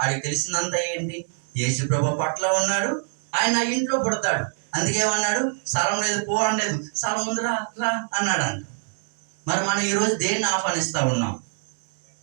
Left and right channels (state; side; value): silent; left; 62 dB below the other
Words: ఆడికి తెలిసిందంతా ఏంటి? యేసుప్రభు పట్ల ఉన్నాడు, ఆయన నా ఇంట్లో పుడతాడు, అందుకేమన్నాడు? స్థలం లేదు, పో అనలేదు, స్థలం ఉంది, రా రా అన్నాడు అంట. మరి మనం ఈరోజు దేన్ని ఆహ్వానిస్తూ ఉన్నాం?